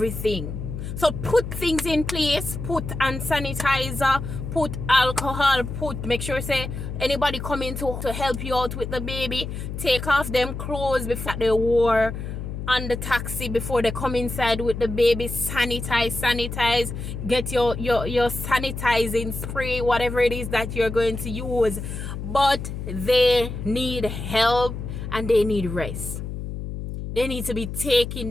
So put things in place, put hand sanitizer, put alcohol, make sure say anybody coming to help you out with the baby, take off them clothes before they wore on the taxi before they come inside with the baby. Sanitize, get your sanitizing spray, whatever it is that you're going to use. But they need help and they need rest. They need to be taking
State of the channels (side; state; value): left; noise; hum, 6 dB below the sound